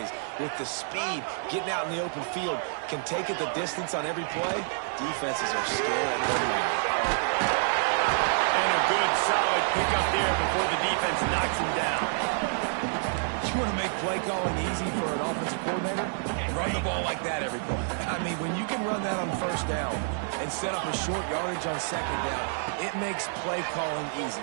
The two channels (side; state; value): left; silent; digital silence